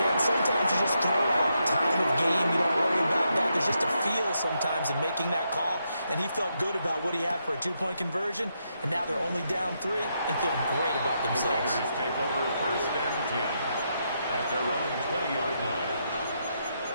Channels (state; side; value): inverted; both; correlation -0.81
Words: and sometimes you just throw out time of game. You don't worry about that. There's just a feel sometimes in making that call. And he felt good about what he had for a 2-point conversion. And now they're only down 3 and feeling great about themselves. The Raiders take over 1st and 10 at their own 20-yard line.